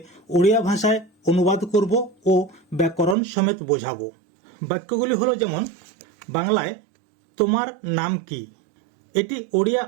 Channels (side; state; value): left; drops out; at 3.2 s